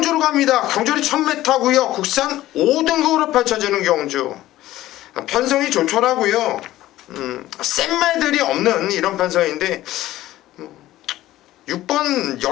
갑니다. 경주는 1000m고요. 국산 5등급으로 펼쳐지는 경주. 편성이 좋더라고요. 센 말들이 없는 이런 편성인데 6번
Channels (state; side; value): quieter; right; 15.2 dB